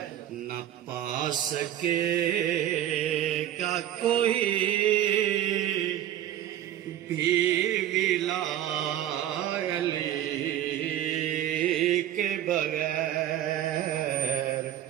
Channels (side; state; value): left; quieter; 11.7 dB